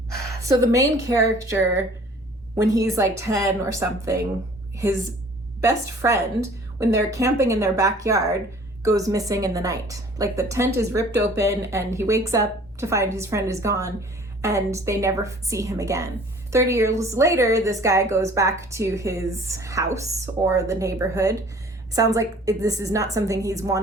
so the main character, when he's like 10 or something, his best friend, when they're camping in their backyard, goes missing in the night. Like, the tent is ripped open and he wakes up to find his friend is gone, and they never see him again. 30 years later, this guy goes back to his house or the neighborhood. Sounds like this is not something he's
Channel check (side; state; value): both; normal; correlation 0.51